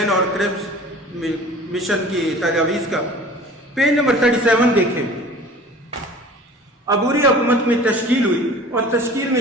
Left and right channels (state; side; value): normal; both; correlation 0.44